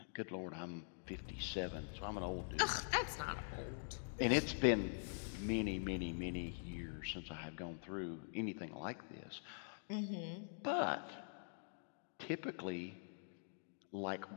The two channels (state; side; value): silent; right; digital silence